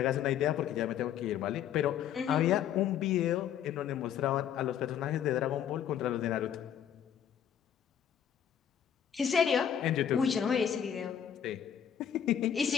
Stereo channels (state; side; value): quieter; right; 9.3 dB